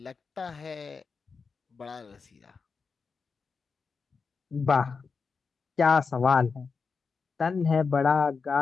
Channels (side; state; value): right; quieter; 5.0 dB